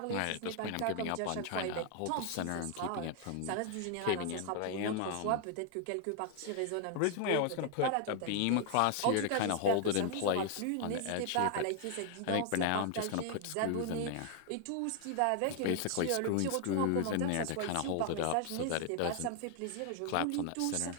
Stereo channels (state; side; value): different; both; correlation 0.00